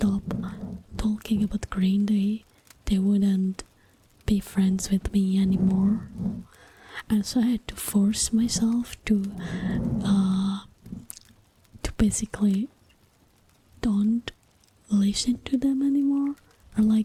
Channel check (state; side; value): identical; both; correlation 1.00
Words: talking about Green Day, they wouldn't be friends with me anymore. And so I had to force myself to basically don't listen to them anymore, or